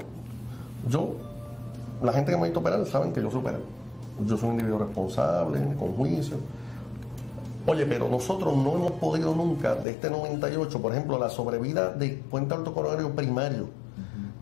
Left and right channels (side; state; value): right; drops out; at 9.9 s